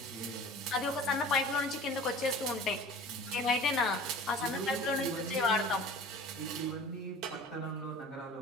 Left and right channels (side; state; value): both; normal; correlation 0.42